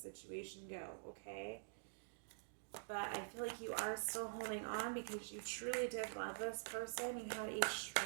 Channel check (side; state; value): left; silent; digital silence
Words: go, okay? But I feel like you are still holding on because you truly did love this person. You had a